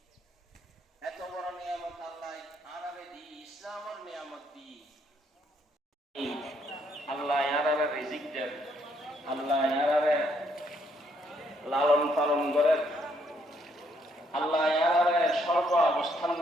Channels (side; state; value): both; normal; correlation 0.71